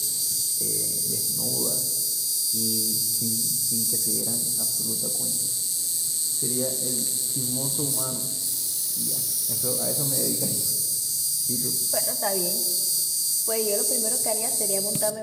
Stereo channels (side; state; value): both; identical; correlation 1.00